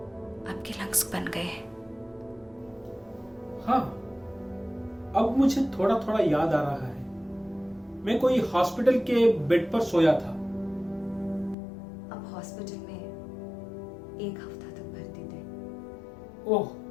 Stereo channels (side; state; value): right; drops out; at 11.6 s